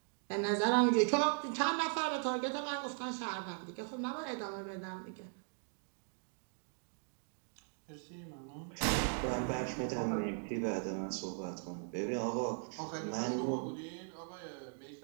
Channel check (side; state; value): left; silent; 52 dB below the other